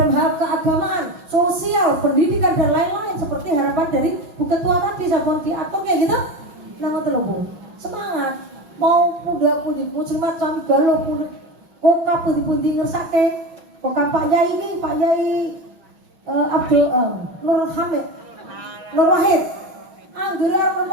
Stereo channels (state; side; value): late; left; 5.8 ms